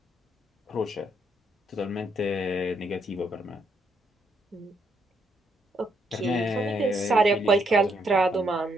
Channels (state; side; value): normal; both; correlation 0.75